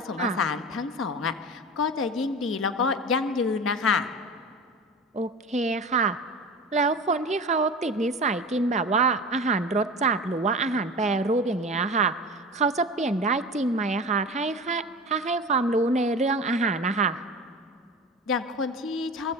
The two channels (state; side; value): normal; both; correlation 0.32